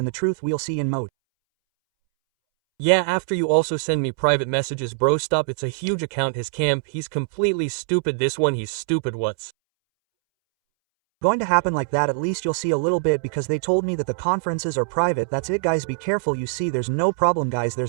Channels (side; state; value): left; silent; 64 dB below the other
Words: the truth we'll see in Mode. Yeah, after you also send me private messages, bro, stop, it's a huge account, his camp, he's completely stupid, this one, he's stupid, what's going to happen like that? At least you'll see a little bit because they told me that the conferences are private. That's it, guys, be careful. You see, there's no problem, guys,